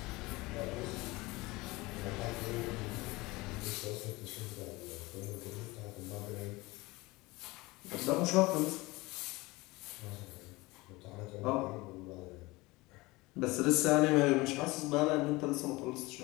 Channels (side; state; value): right; quieter; 22.0 dB